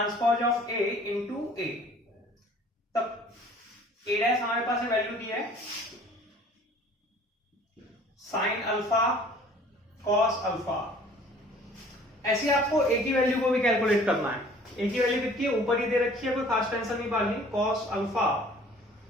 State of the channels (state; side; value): normal; both; correlation 0.51